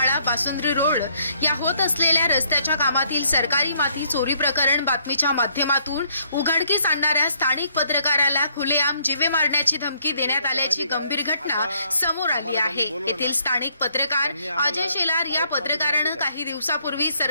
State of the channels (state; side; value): inverted; both; correlation -0.68